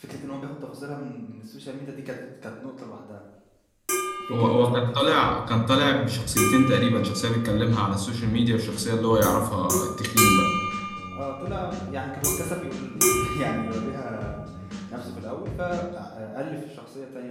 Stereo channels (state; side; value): identical; both; correlation 1.00